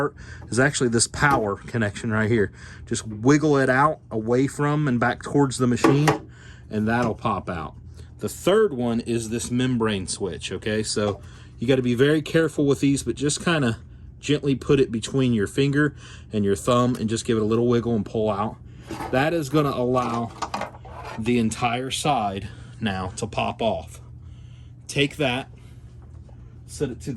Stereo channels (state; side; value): identical; both; correlation 1.00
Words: is actually this power connection right here. Just wiggle it out away from and back towards the machine, and that'll pop out. The third one is this membrane switch, okay? So you got to be very careful with these, but just kind of gently put it between your finger and your thumb and just give it a little wiggle and pull out. That is going to allow the entire side now to pop off. Take that, set it to